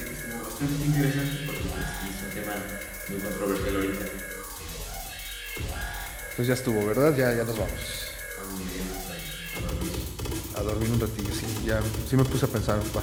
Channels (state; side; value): identical; both; correlation 1.00